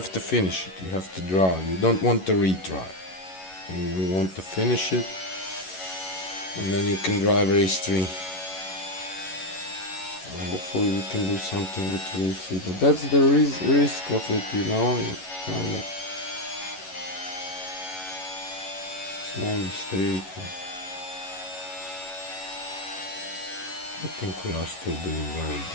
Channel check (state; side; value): late; right; 11 ms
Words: to finish it. You have to draw. You don't want to retry. You want to finish it, and then you can drive race 3. Hopefully we can do something with race 3, but that's the risk of it, You kind of small mistake. I think we are still doing very